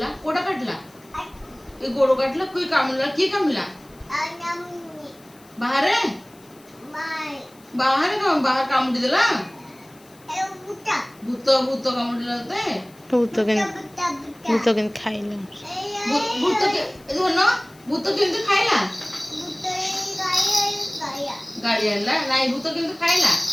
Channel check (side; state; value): left; noise; hiss, 27 dB below the sound